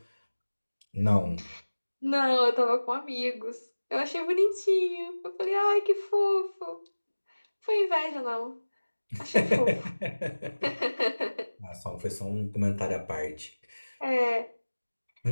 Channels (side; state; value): both; inverted; correlation -1.00